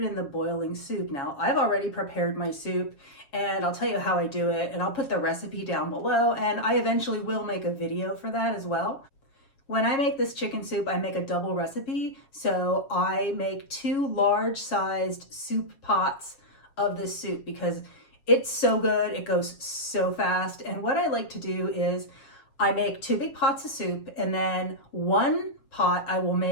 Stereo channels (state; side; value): late; right; 7.3 ms